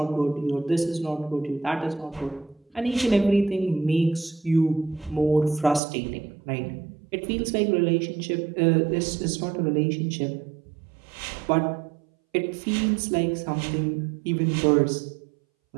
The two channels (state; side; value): drops out; left; at 5.8 s